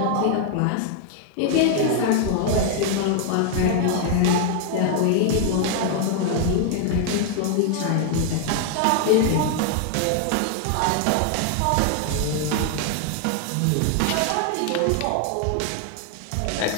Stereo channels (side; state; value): both; different; correlation 0.00